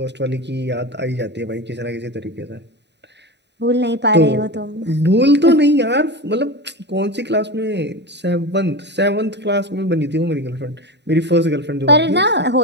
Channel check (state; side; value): late; left; 0.50 ms